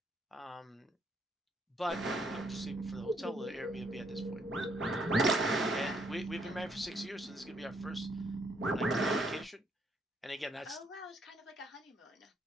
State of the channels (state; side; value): normal; both; correlation 0.71